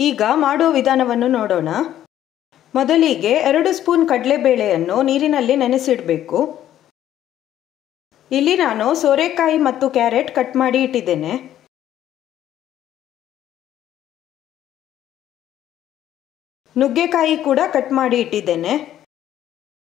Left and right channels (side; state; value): right; quieter; 11.8 dB